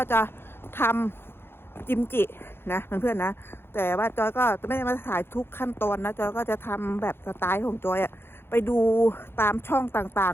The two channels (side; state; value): right; late; 0.11 ms